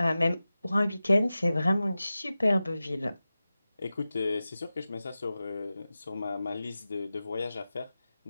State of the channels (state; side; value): inverted; both; correlation -0.95